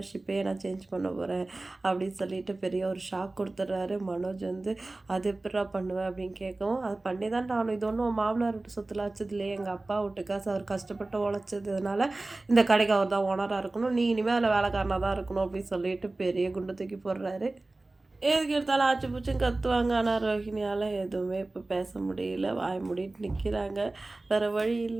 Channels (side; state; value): left; quieter; 3.0 dB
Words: நான் சேஞ்ச் பண்ண போகிறேன் அப்படின்னு சொல்லிட்டு பெரிய ஒரு ஷாக் கொடுத்துட்றாரு. மனோஜ் வந்து அது எப்படா பண்ணுவேன் அப்படின்னு கேட்கவும், அது பண்ணி தான் ஆகணும். இது ஒன்றும் மாமனார் வீட்டு சொத்துல வச்சது இல்லையே, எங்கள் அப்பா வீட்டு காசு, அவர் கஷ்டப்பட்டு உழைச்சதுனால இந்த கடைக்கு அவர் தான் ஓனராக இருக்கணும், நீ இனிமேல் அதில் வேலைக்காரனாக தான் இருக்கணும் அப்படின்னு சொல்லிட்டு பெரிய குண்டு தூக்கி போடுறாரு. எதுக்கு எடுத்தாலும் ஆச்சு பூச்சும் கத்துவாங்க. ஆனால் ரோஹிணியால் எதுவுமே இப்போ பேச முடியல, வாய் மூடிட்டு நிற்கிறாங்க. வேறு வழி